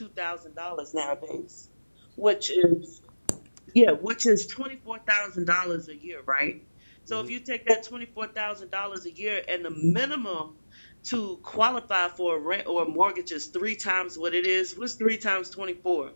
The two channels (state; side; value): inverted; both; correlation -1.00